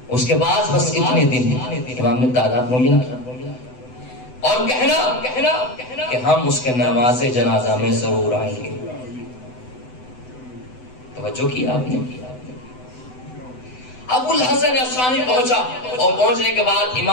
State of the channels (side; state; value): right; late; 7.9 ms